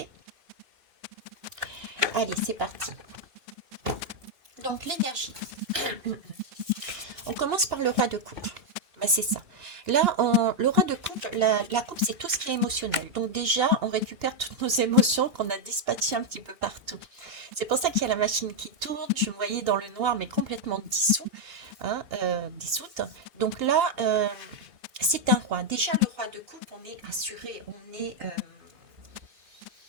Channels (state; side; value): late; left; 2.9 ms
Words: Allez, c'est parti. Donc, l'énergie. On commence par le roi de coupe. Bah, c'est ça. Là, le roi de coupe, la coupe, c'est tout ce qui est émotionnel. Donc déjà, on récupère toutes nos émotions qu'on a dispatchées un petit peu partout. C'est pour ça qu'il y a la machine qui tourne. Je me voyais dans le noir, mais complètement dissous, hein, dissoute. Donc là, c'est un roi. Déjà, le roi de coupe, on est assuré, on est,